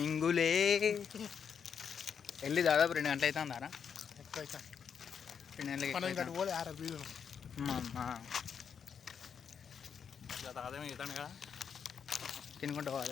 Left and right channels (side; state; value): right; quieter; 7.1 dB